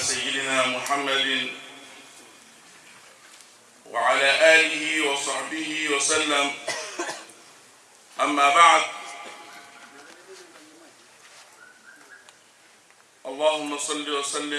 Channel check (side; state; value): both; identical; correlation 1.00